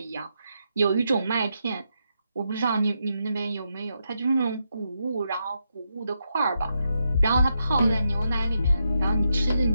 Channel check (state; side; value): inverted; both; correlation -0.82